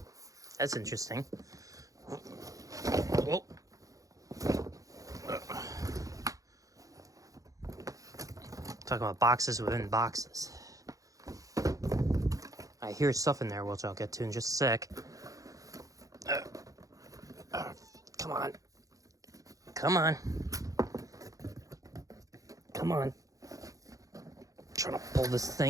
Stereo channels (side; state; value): left; late; 0.17 ms